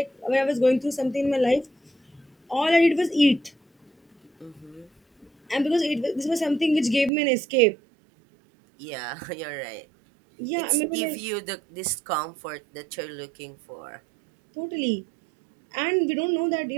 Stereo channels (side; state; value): left; drops out; at 7.1 s